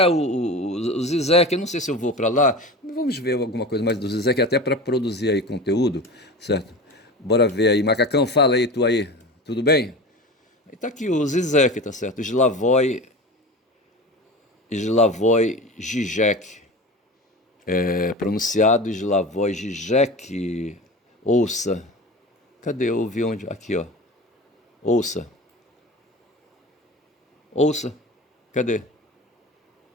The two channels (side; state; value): both; normal; correlation 0.32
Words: o Zizek, eu não sei se eu vou para lá, vamos ver alguma coisa mais do Zizek, até para produzir aí conteúdo, certo? Bora ver aí. Macacão, fala aí, tu aí, tudo bem? E tá aqui o Zizek, tá certo? Slavoj Žižek, pronunciado Slavoj Žižek, ouça. Cadê? Eu ouvi onde? Aqui, ó. Ouça. Ouça. Cadê?